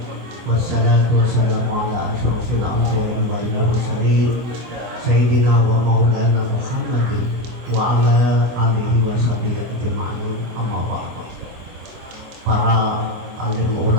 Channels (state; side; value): late; left; 24 ms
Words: Wassalatu wassalamu ala asyrofil anbiya'i wal mursalin sayyidina wa maulana Muhammadin wa ala alihi wa sahbihi ajma'in. Amma ba'd. Para alim